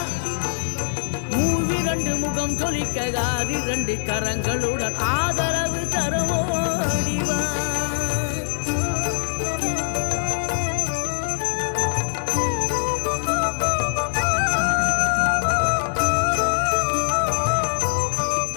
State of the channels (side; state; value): right; silent; 59 dB below the other